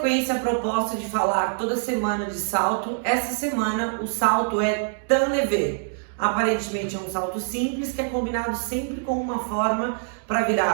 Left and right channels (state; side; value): silent; left; digital silence